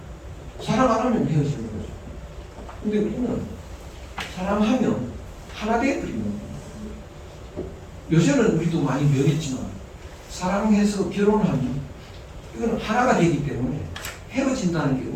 사랑 안 하면 헤어지는 거죠. 근데 우리는 사랑하면 하나 되어버리는 거예요. 요새는 우리도 많이 변했지만 사랑해서 결혼하면 이건 하나가 되기 때문에 헤어진다는 게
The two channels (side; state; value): both; identical; correlation 1.00